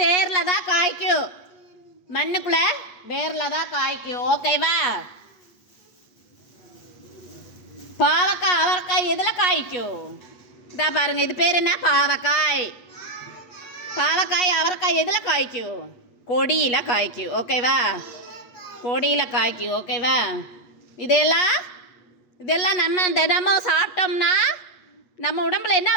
தான் காய்க்கும். மண்ணுக்குள்ளே வேரில் தான் காய்க்கும், ஓகேவா? பாவக்காய் அவரைக்காய் எதில் காய்க்கும்? இதா பாருங்க, இது பேர் என்ன? பாவக்காய். பாவக்காய் அவரைக்காய் எதில் காய்க்கும்? கொடியில் காய்க்கும், ஓகேவா? கொடியில் காய்க்கும், ஓகேவா? இதெல்லாம் நம்ம தினமும் சாப்பிட்டோம்னா நம்ம உடம்புல என்ன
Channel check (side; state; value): right; late; 8.2 ms